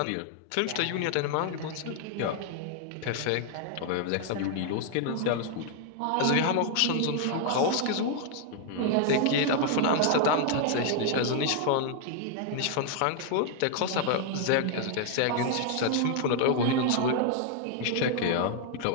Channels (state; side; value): different; both; correlation 0.00